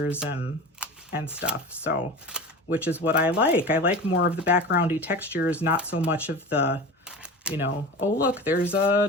and stuff. So, which is what I like. I like more of the backgroundy textures, not so much of the, oh look, there's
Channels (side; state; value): both; normal; correlation 0.32